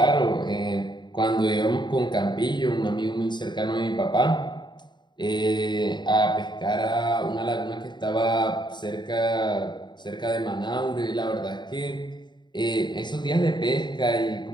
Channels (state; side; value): late; right; 0.22 ms